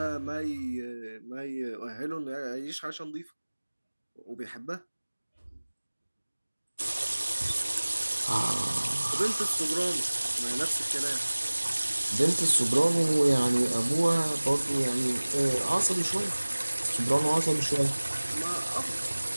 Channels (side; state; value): both; inverted; correlation -1.00